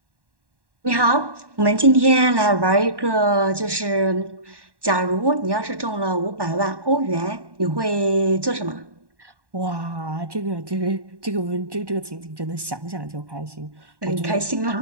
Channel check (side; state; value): left; late; 1.1 ms